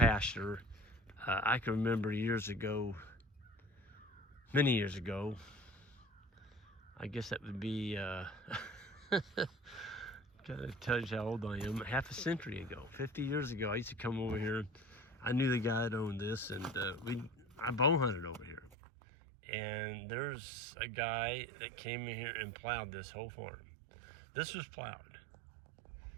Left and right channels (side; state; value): left; drops out; at 18.8 s